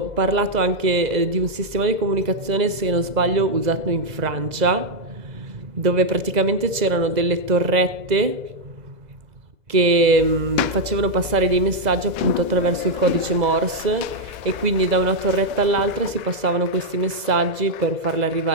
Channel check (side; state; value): left; late; 2.0 ms